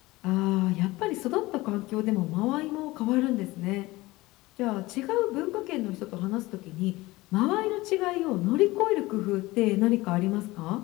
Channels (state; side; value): quieter; right; 20.1 dB